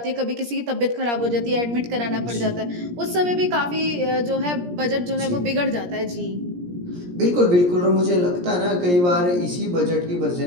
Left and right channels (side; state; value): left; late; 17 ms